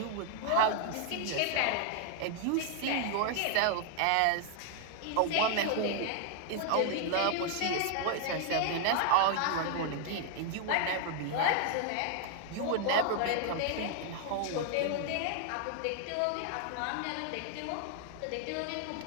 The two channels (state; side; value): different; both; correlation 0.00